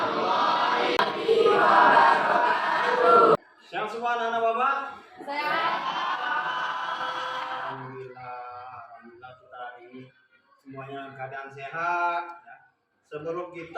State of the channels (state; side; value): identical; both; correlation 1.00